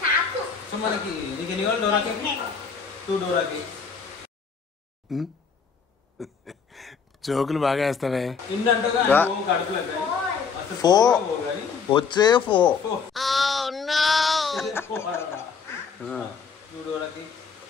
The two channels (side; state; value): right; quieter; 5.8 dB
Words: సో మనకి నీకు ఎన్ని కావాలి డోరా కేక్? 2 Dora cake. జోకులు బాగా వేస్తావే. ఇందంటగా వచ్చే 4. 2 డోరా కేక్,